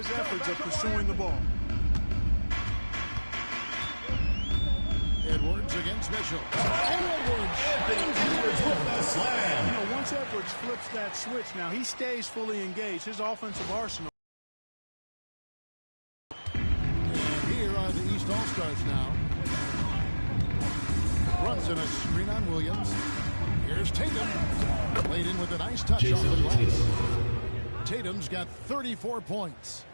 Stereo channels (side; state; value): both; inverted; correlation -1.00